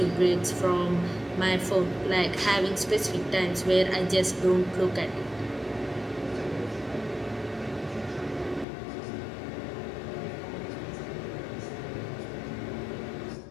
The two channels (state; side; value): drops out; right; at 8.7 s